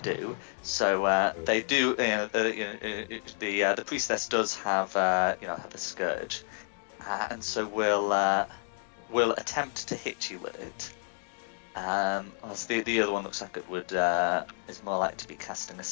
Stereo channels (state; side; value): silent; right; 58 dB below the other